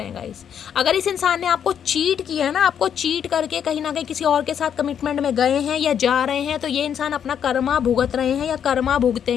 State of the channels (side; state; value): right; quieter; 8.5 dB